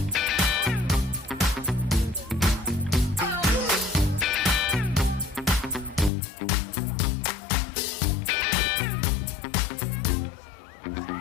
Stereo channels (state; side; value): drops out; right; at 6.1 s